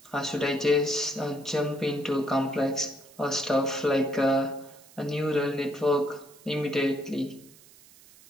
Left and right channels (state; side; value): noise; right; hiss, 24 dB below the sound